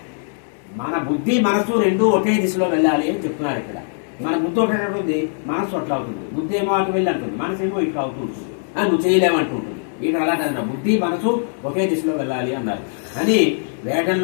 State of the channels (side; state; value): right; silent; 61 dB below the other